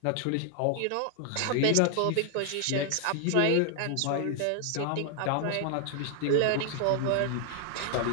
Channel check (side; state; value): both; different; correlation 0.00